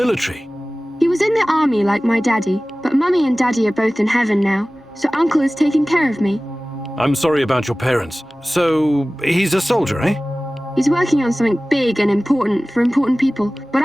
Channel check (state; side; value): normal; both; correlation 0.98